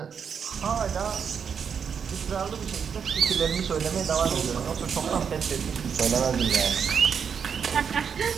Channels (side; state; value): left; quieter; 6.9 dB